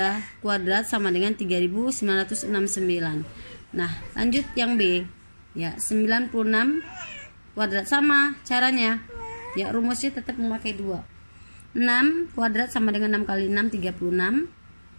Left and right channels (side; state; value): both; inverted; correlation -1.00